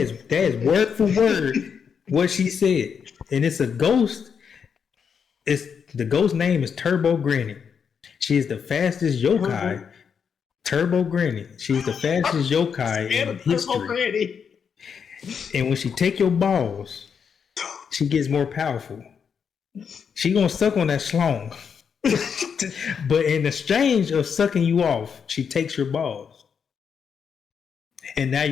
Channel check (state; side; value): quieter; right; 6.8 dB